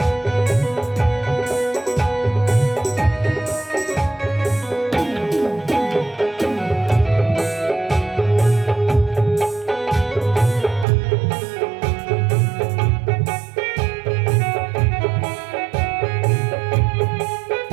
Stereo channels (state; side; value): drops out; left; at 10.9 s